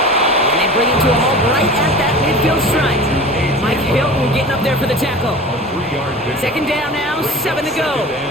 And they bring him to a halt right at that midfield stripe. Mike Hilton getting up there for the tackle. Second down now, 7 to go.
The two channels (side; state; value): both; normal; correlation 0.37